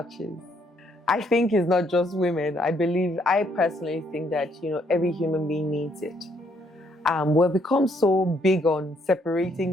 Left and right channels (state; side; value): normal; both; correlation 0.70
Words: I think it's not just women. I personally think that, every human being needs it. We've become so big on